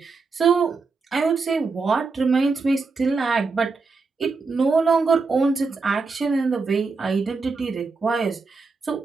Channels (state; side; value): quieter; left; 4.3 dB